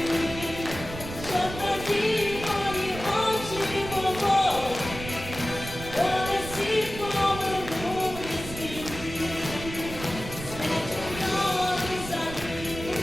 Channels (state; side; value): noise; right; rumble, 10 dB below the sound